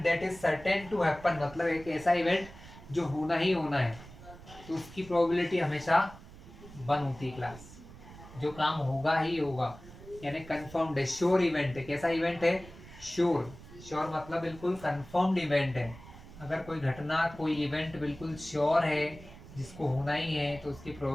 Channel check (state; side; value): noise; right; rumble, 18 dB below the sound